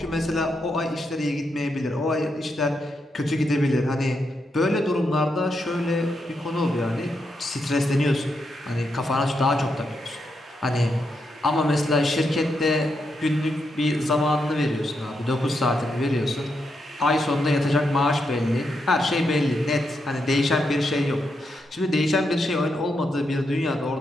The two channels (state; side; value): normal; both; correlation 0.82